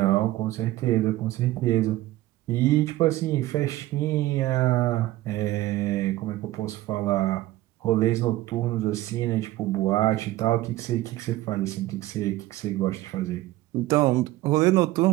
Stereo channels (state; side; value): quieter; left; 16.5 dB